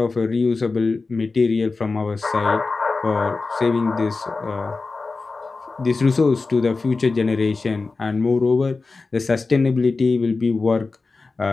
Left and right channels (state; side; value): quieter; right; 3.9 dB